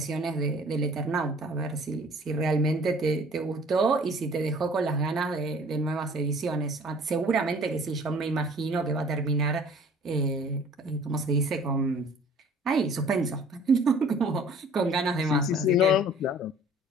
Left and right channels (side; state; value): both; normal; correlation 0.51